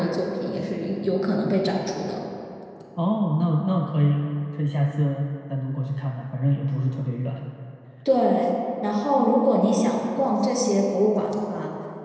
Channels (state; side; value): identical; both; correlation 1.00